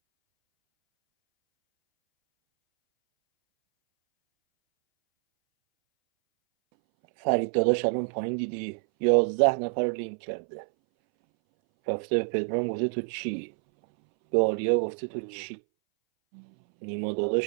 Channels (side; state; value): left; silent; 60 dB below the other